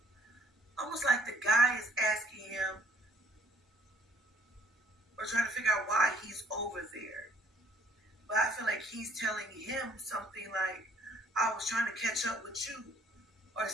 the guy is asking him or trying to figure out why he's over there. But I feel like he's telling him something like, I was trying to catch up with you or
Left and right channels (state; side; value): normal; both; correlation 0.60